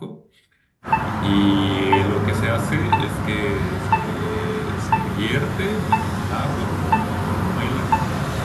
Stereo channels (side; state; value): both; identical; correlation 1.00